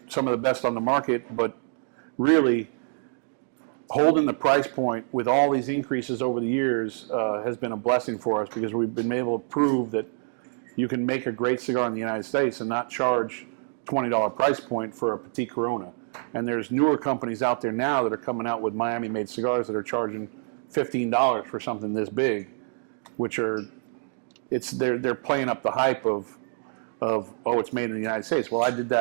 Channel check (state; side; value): silent; left; 61 dB below the other